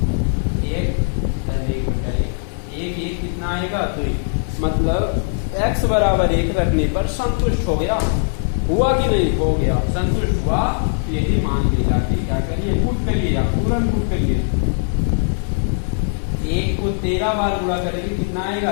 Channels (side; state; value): right; silent; 62 dB below the other